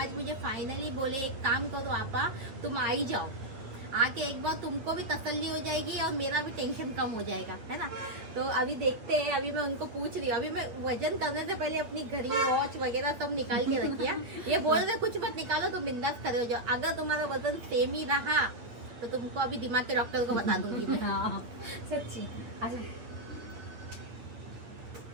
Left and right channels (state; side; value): late; left; 8.8 ms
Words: मुझे फाइनली बोले एक काम करो आपा, तुम आ ही जाओ, आके एक बार तुमको भी तसल्ली हो जाएगी और मेरा भी टेंशन कम हो जाएगा, है ना। तो अभी देखते हैं। अभी मैं उनको पूछ रही हूँ, अभी मैं वजन करने से पहले अपनी घड़ी, वॉच वगैरह सब निकाल के रखिया। ये बोल रहे कुछ मत निकालो, तुम बिंदास खड़े हो जाओ। अगर तुम्हारा वजन सेम ही रहा तो तुमको अभी दिमाग के डॉक्टर को बता दूंगी मैं। सच्ची